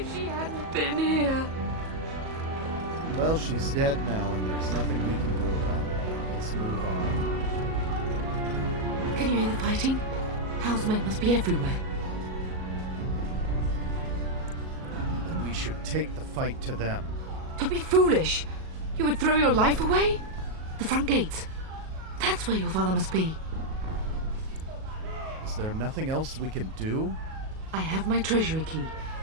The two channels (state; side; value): late; left; 37 ms